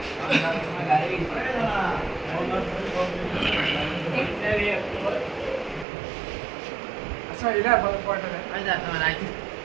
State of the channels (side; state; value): left; drops out; at 5.9 s